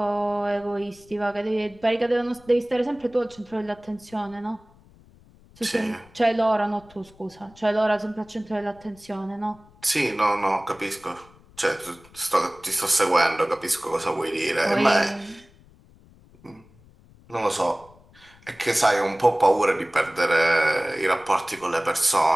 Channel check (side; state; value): left; noise; rumble, 27 dB below the sound